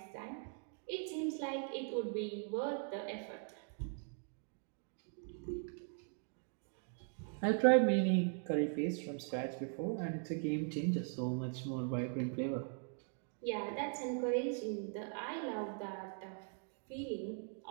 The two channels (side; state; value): left; silent; 51 dB below the other